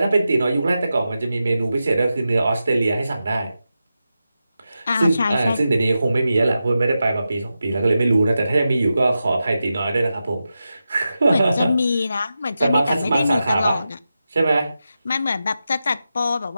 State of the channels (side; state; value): both; inverted; correlation -0.90